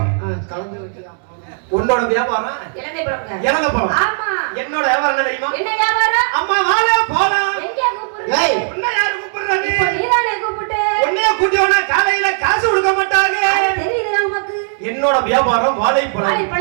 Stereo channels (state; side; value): silent; left; digital silence